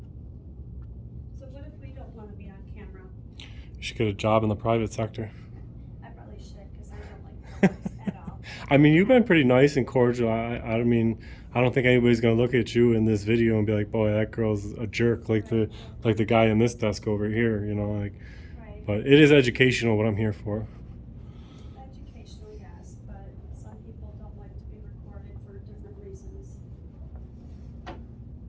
So what if we don't want to be on camera? You should get a job in the private sector. I probably should because I don't like this at all. I mean, you've been pretty nice and cordial. I mean, I don't think anybody's gonna look at you in this video and be like, "Boy, that girl's a jerk," like the guy in this desk over here, like. Right. But it is educational. What I'm here for. Educational, yes, but some people don't like to be recorded for different reasons.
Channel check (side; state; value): both; identical; correlation 1.00